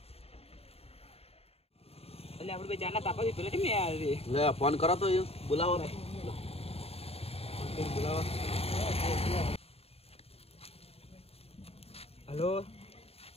એટલે આપણે બે જાના તાપા પેલા કેમ યાર રે લે ફોન કરો તો બોલાવો હેલો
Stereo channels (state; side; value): late; right; 0.29 ms